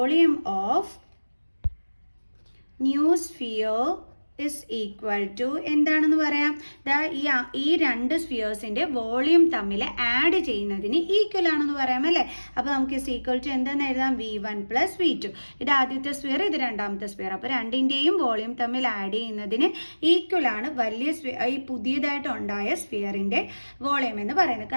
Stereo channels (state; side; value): inverted; both; correlation -1.00